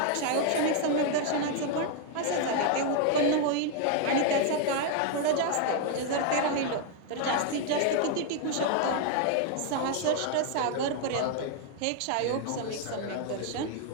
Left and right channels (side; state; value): both; different; correlation 0.00